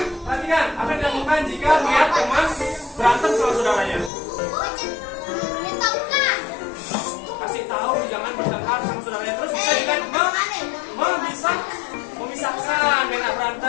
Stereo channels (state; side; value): drops out; right; at 4.1 s